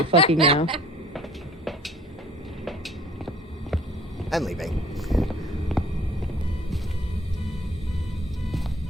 fucking now. I'm leaving.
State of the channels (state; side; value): normal; both; correlation 0.54